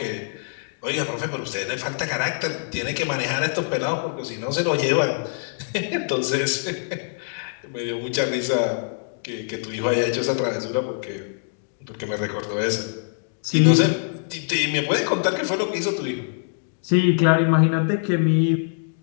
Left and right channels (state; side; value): silent; right; digital silence